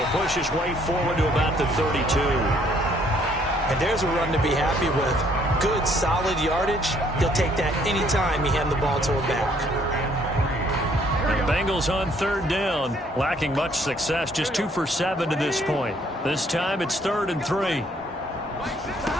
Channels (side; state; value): both; normal; correlation 0.64